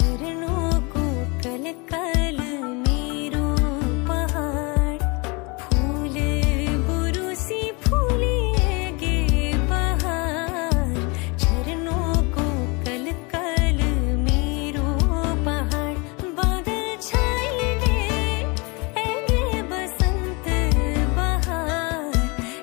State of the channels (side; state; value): right; quieter; 29.0 dB